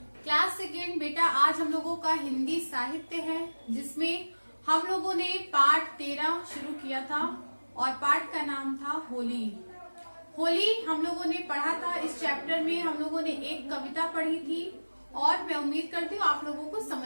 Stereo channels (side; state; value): both; inverted; correlation -1.00